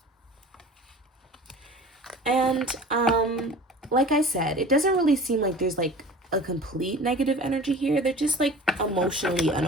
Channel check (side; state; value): both; normal; correlation 0.41